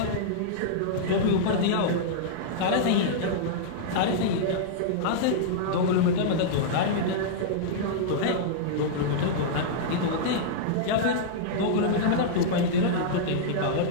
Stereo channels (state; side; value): different; both; correlation -0.02